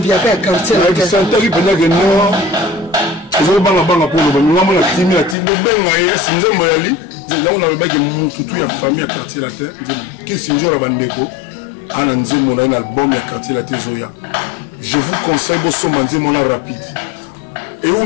ya quartier santaki mpenake no ezobangabanga mpo loba nyonga na timi bobenga ye esi nzembo yali yango nalobaki motutu ya famille ya quartier latin kisi nzora bandeko ana nzembo na ye na album ya quartier latin ezoya je vous conseille bosomba nzembo na rapide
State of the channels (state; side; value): drops out; right; at 5.4 s